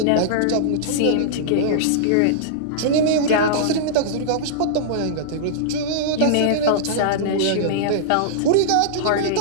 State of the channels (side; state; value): both; different; correlation -0.02